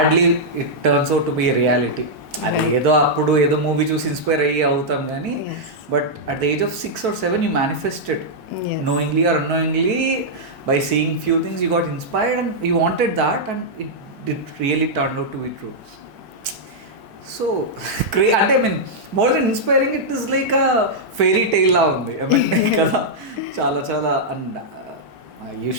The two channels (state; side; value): normal; both; correlation -0.07